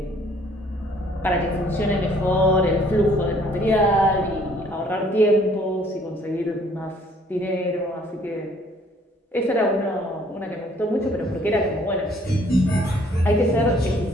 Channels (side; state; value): both; normal; correlation 0.60